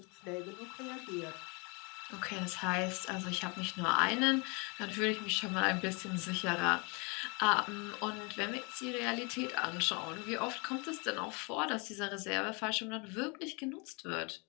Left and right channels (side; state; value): right; quieter; 31.3 dB